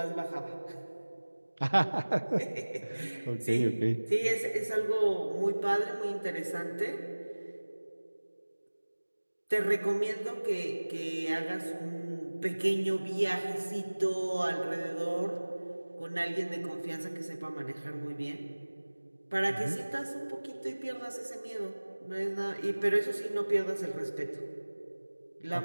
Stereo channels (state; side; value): inverted; both; correlation -1.00